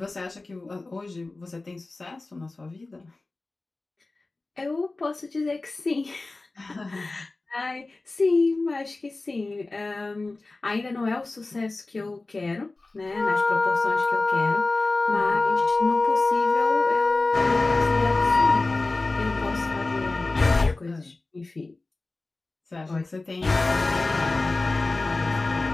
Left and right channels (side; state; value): right; quieter; 3.3 dB